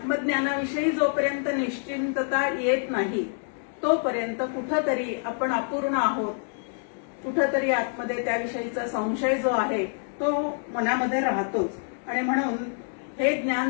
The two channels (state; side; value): silent; right; digital silence